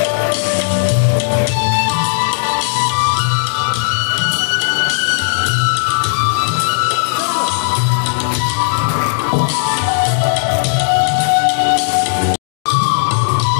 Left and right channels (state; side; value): silent; right; digital silence